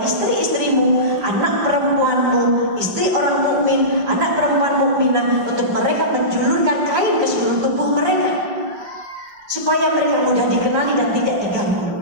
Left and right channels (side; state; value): left; late; 5.1 ms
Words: istri-istrimu, anak perempuanmu, istri orang mukmin, anak perempuan mukminah, untuk mereka menjulurkan kain ke seluruh tubuh mereka, supaya mereka mudah dikenali dan tidak